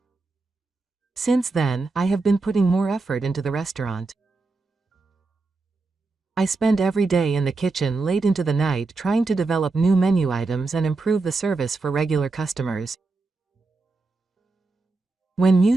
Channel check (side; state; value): left; quieter; 3.7 dB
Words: Since then, I have been putting more effort into the restaurant. I spend every day in the kitchen late into the night trying to develop new menu items and improve the service for regular customers. When